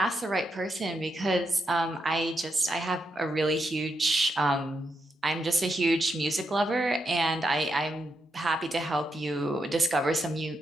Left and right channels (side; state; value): both; normal; correlation 0.83